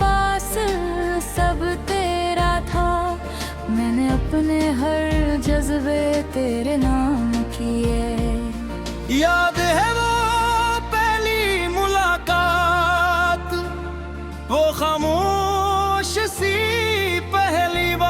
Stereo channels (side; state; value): both; identical; correlation 1.00